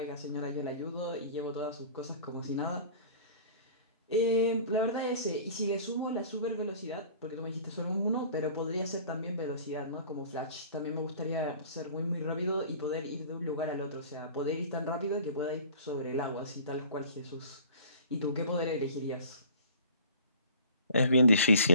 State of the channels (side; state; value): both; inverted; correlation -0.45